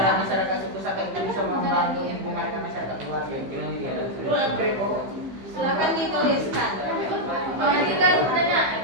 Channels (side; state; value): left; late; 15 ms